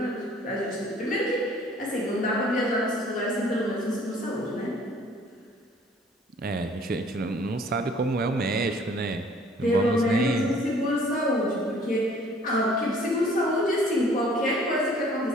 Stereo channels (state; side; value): normal; both; correlation 0.55